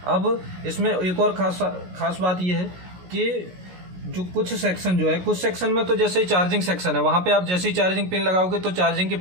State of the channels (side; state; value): left; late; 16 ms